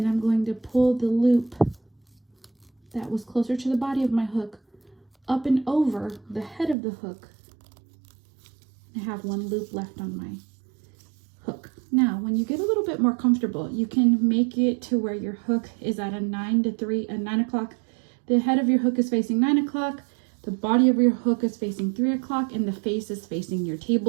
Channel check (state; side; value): drops out; left; at 6.8 s